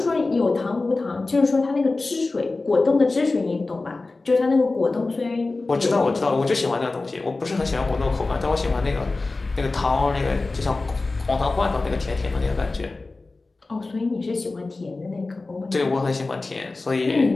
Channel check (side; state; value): right; quieter; 3.4 dB